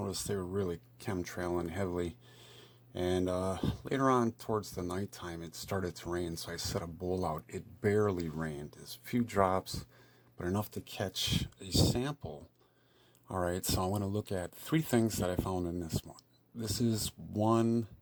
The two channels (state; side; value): identical; both; correlation 1.00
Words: they were really chemtrailing heavily. And later on, towards the nighttime, it started to rain, so I set a bowl out. It barely rained. There's a few drops, but enough to catch a sample. All right, so I want to look at three things that I found in this one. This is one.